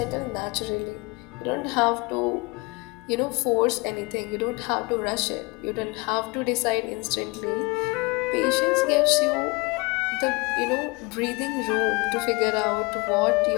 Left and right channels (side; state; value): right; quieter; 26.7 dB